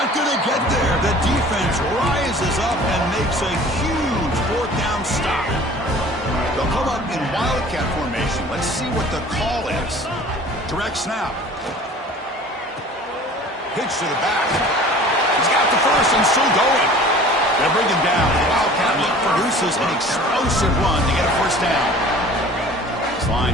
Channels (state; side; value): normal; both; correlation 0.46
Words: going to get there. The defense rises up and makes a huge 4th down stop. They'll come up in Wildcat formation. Let's see what the call is. Direct snap. Pitch to the back. He's got the first and still going. They'll bring him down. The Wildcat look produces an explosive run to get a first down. This